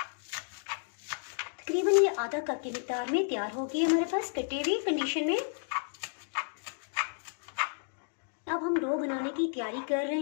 तकरीबन ये आधा कप की मिकदार में तैयार होगी हमारे पास कटी हुई कंडीशन में। अब हम डो बनाने की तैयारी कर रहे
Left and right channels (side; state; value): right; silent; digital silence